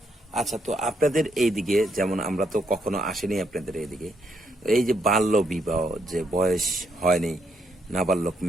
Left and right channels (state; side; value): normal; both; correlation 0.76